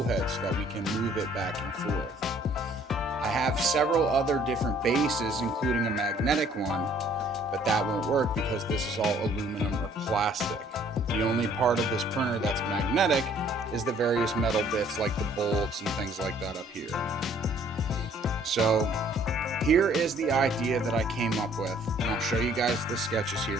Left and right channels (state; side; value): normal; both; correlation 0.59